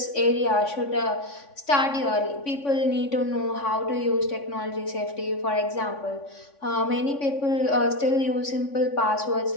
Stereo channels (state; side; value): late; right; 3.5 ms